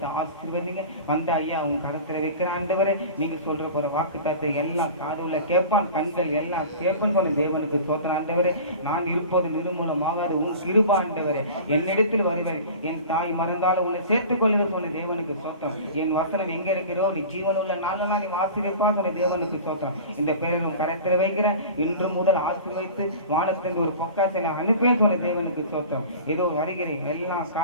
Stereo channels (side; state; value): both; inverted; correlation -0.37